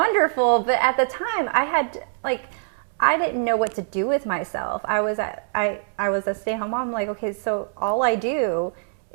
But at the time, I didn't know what to do with myself. I was a stay-at-home mom. I'm like, okay, so all I do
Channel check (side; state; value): left; silent; digital silence